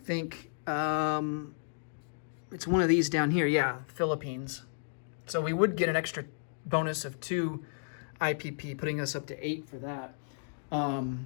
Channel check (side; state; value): right; silent; digital silence